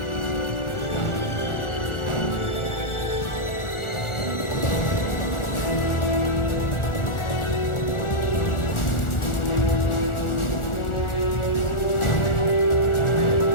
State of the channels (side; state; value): right; late; 1.4 ms